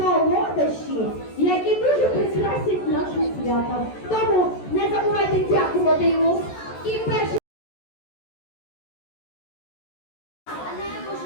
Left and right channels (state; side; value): late; right; 14 ms